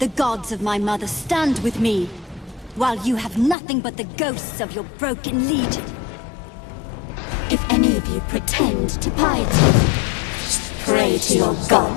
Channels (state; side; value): drops out; right; at 3.6 s